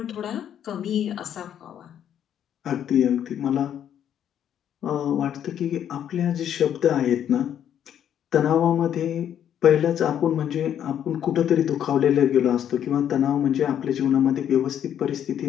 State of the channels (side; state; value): right; quieter; 9.8 dB